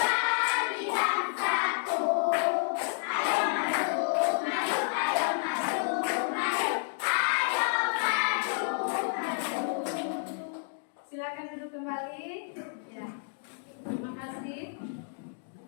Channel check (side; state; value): right; silent; digital silence